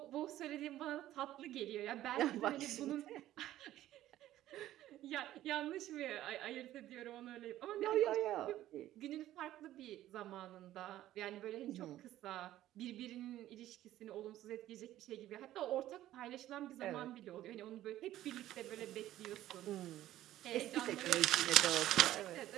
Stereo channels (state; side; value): quieter; left; 13.8 dB